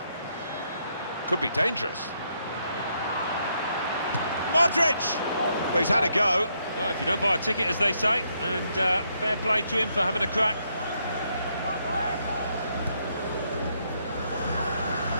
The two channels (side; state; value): both; inverted; correlation -0.76